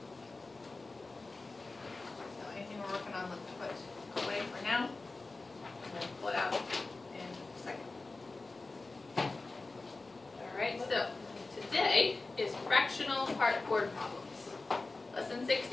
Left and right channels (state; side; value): quieter; right; 3.5 dB